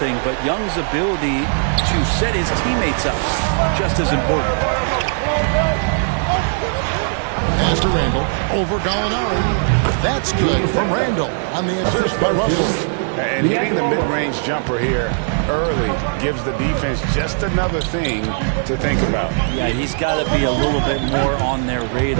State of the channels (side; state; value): left; silent; digital silence